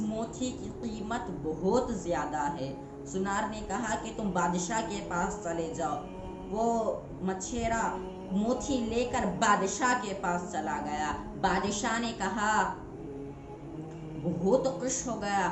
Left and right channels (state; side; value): identical; both; correlation 1.00